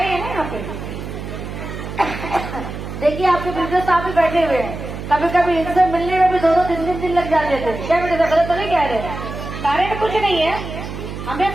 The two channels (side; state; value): right; noise; hum, 8 dB below the sound